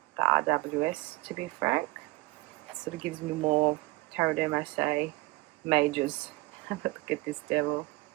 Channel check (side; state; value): left; quieter; 21.1 dB